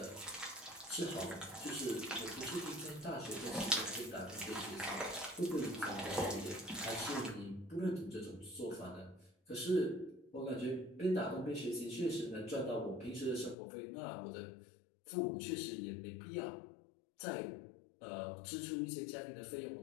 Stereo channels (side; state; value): right; drops out; at 13.6 s